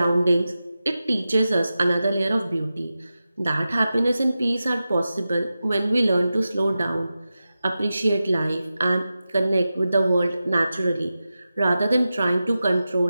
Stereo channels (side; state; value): both; inverted; correlation -0.93